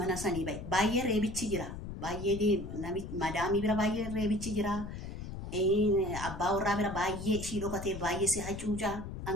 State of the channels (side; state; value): left; noise; rumble, 8 dB below the sound